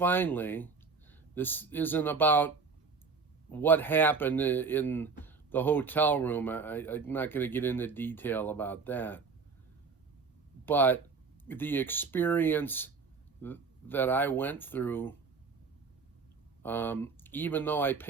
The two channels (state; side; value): quieter; left; 4.9 dB